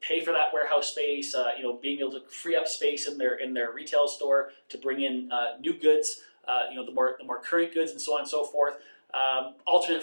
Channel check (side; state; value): both; inverted; correlation -1.00